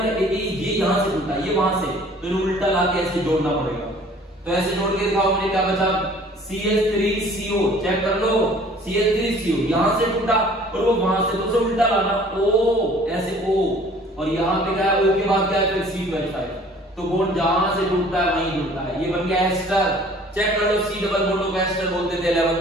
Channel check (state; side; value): normal; both; correlation 0.52